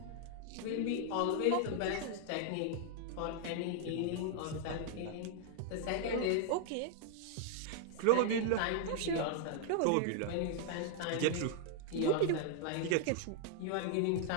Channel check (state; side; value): different; both; correlation 0.00